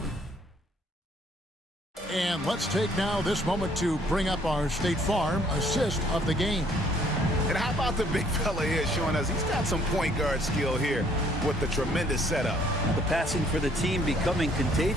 And let's take now this moment to bring up our State Farm assist of the game. And how about the big fella here showing us he's got some point guard skill here with the tremendous setup. The passing for the team becoming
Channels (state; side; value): normal; both; correlation 0.63